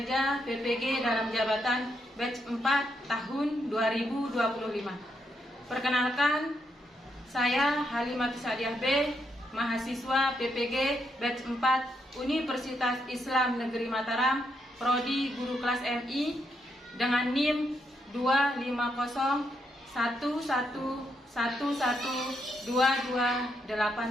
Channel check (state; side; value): normal; both; correlation 0.79